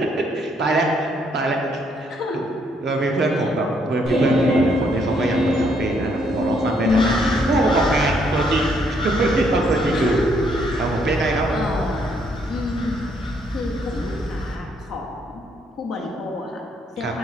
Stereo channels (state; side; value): normal; both; correlation 0.71